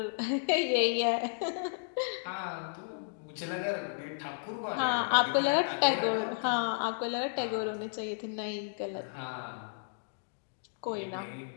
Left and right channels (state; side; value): silent; right; digital silence